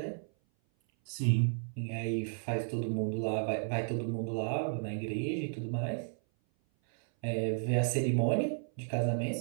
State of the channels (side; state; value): left; silent; 56 dB below the other